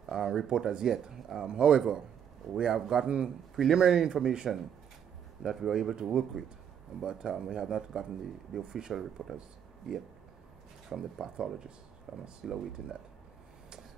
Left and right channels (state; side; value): quieter; left; 8.6 dB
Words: report as yet. However, we have gotten preliminary information that we are able to work with, but we have not gotten the official report as yet from the pathologist. I'm still awaiting that.